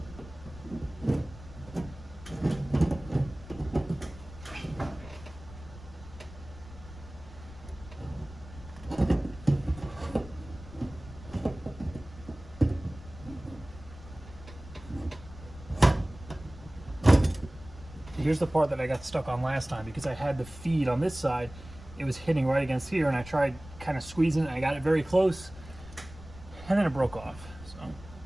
Here's the part that I got stuck on last time, because I had the feed on this side. It was hitting right against here, and I tried kind of squeezing it. I got it very close, and then it broke off. So,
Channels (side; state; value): left; noise; rumble, 17 dB below the sound